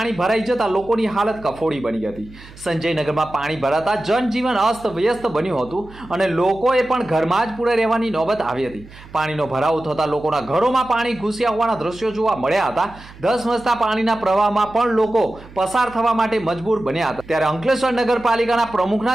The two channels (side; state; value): right; noise; hum, 20 dB below the sound